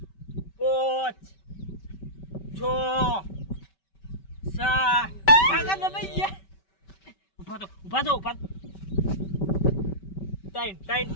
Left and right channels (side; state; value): right; late; 5.2 ms